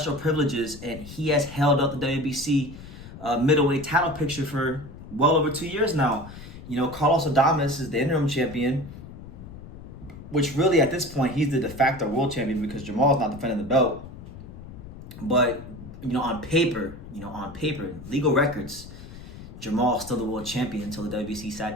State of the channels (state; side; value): noise; left; rumble, 14 dB below the sound